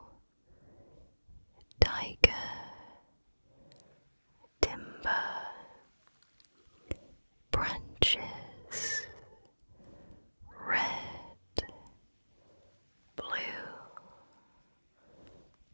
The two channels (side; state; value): both; inverted; correlation -1.00